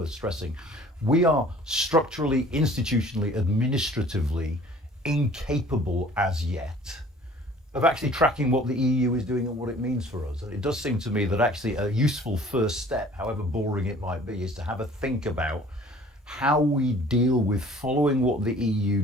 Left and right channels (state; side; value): normal; both; correlation 0.51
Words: stressing. We are structurally, institutionally, administratively incapable as yet of actually tracking what the EU is doing and what it means for us. And it does seem to me that actually a useful first step, however boring it might be, is to have a think about how we deal with following what the EU